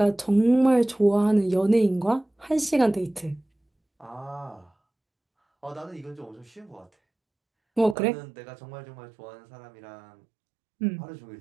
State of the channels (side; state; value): left; drops out; at 8.0 s